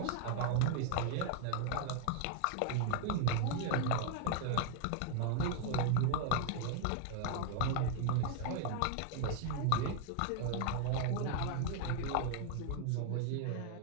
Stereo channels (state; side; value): different; both; correlation 0.00